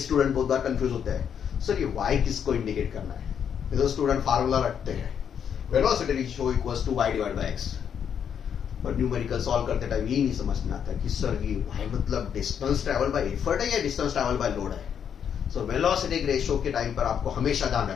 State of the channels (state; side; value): quieter; right; 8.1 dB